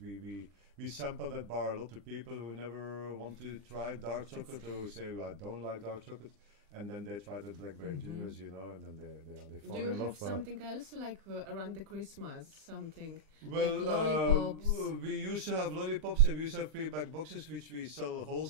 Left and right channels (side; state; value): left; late; 20 ms